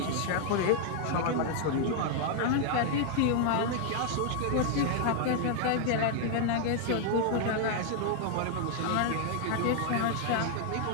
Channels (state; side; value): different; both; correlation 0.00